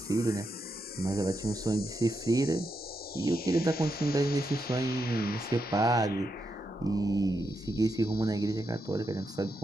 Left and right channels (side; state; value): both; normal; correlation 0.84